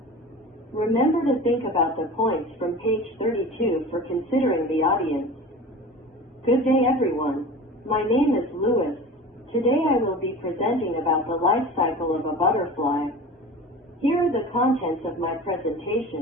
Remember to think about the points from page 32 for considering the audience. Good day, everyone. My name is Louis. Today I will be presenting about the life cycle of a butterfly. Here are the contents of my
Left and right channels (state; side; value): normal; both; correlation 0.36